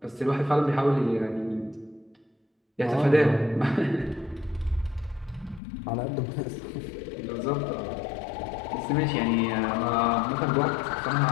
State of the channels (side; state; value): right; drops out; at 5.6 s